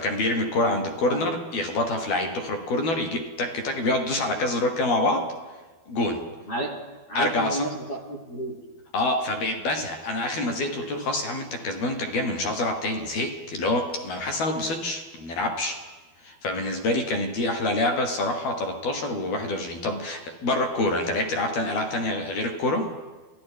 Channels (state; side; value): late; right; 12 ms